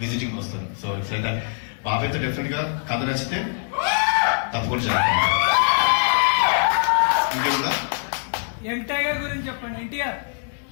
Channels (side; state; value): right; silent; digital silence